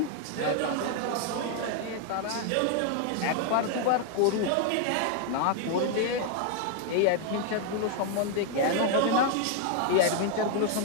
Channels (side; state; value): both; different; correlation 0.00